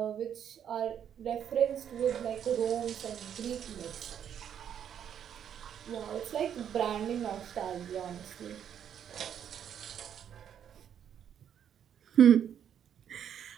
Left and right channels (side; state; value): left; quieter; 9.0 dB